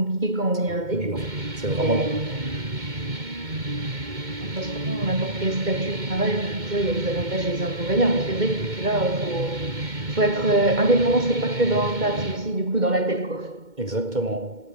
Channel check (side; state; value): left; late; 2.2 ms